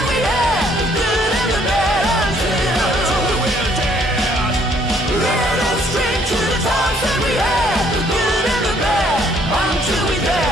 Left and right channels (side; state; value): both; normal; correlation 0.64